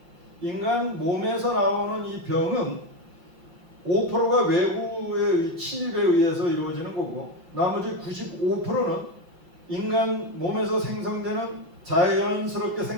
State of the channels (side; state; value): left; late; 5.8 ms